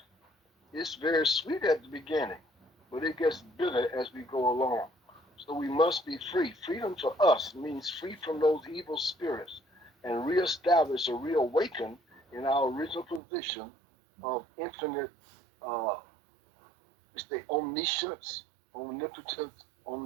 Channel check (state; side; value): drops out; left; at 13.2 s